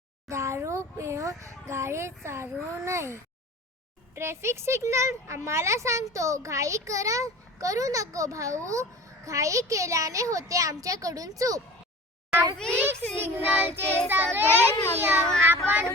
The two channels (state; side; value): normal; both; correlation 0.39